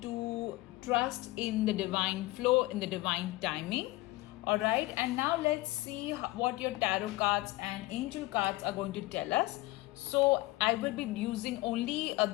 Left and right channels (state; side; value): quieter; right; 19.7 dB